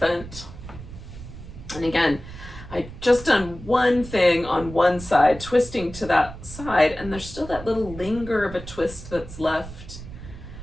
And again, I just done one thing on one side, twisting to that side, and there's still that little linger of a twist that's left.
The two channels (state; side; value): noise; right; rumble, 13 dB below the sound